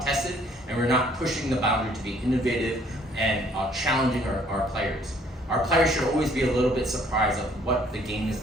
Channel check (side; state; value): both; normal; correlation 0.61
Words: tested, and we're not pushing the boundary to be innovative and challenging our players. our players should always be a little bit surprised of what the game is